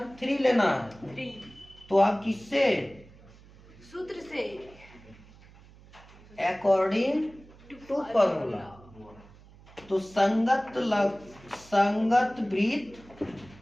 लेना है। तो आप किससे, सूत्र से, अकॉर्डिंग टू फॉर्मूला। तो संगत वृत्त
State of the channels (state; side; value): noise; right; hum, 23 dB below the sound